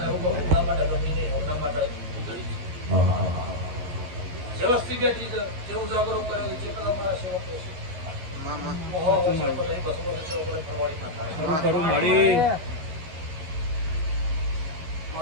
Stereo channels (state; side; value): late; left; 12 ms